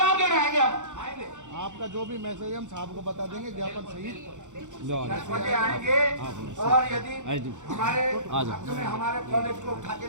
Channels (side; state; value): left; late; 0.85 ms